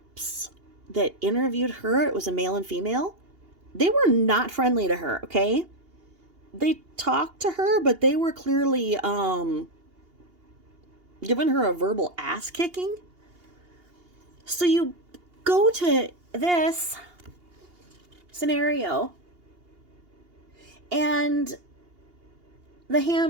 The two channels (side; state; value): left; late; 2.8 ms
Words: that interviewed her, it was a male and female, they were not friendly to her, okay? They talked to her, but they were clearly giving her a verbal ass kicking. So you go to this scenario, and the